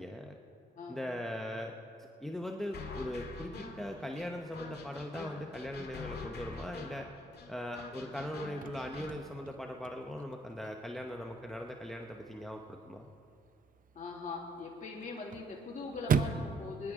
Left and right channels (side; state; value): both; normal; correlation 0.69